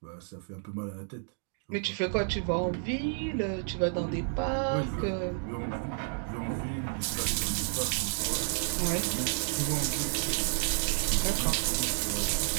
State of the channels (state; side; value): silent; left; 57 dB below the other